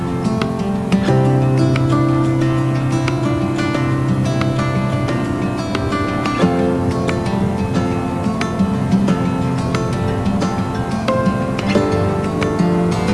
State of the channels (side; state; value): both; identical; correlation 1.00